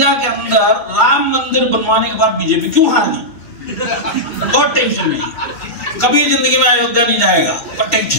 के अंदर राम मंदिर बनवाने के बाद बीजेपी क्यों हार गई? बहुत टेंशन में, कभी जिंदगी में अयोध्या नहीं जाएगा, पर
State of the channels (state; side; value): late; right; 2.2 ms